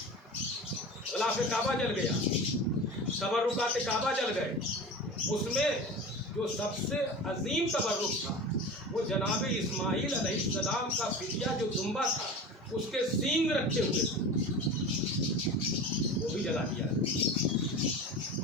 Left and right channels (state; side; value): normal; both; correlation 0.32